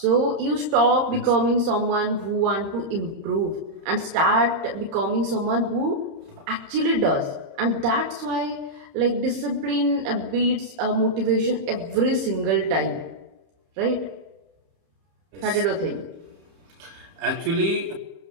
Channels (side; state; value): left; late; 30 ms